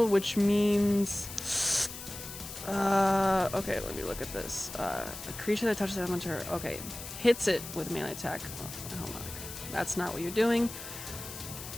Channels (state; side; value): noise; left; hiss, 11 dB below the sound